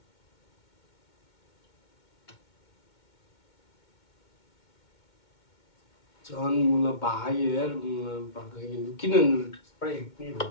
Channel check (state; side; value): late; right; 2.2 ms